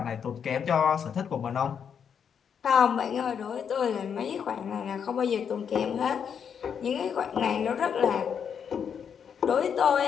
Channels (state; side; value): quieter; right; 7.4 dB